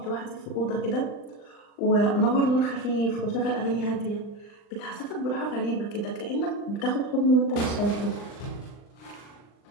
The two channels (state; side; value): late; right; 39 ms